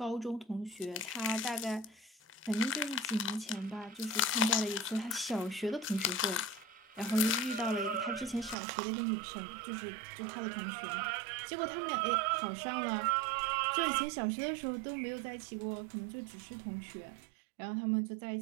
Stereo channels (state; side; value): drops out; left; at 8.6 s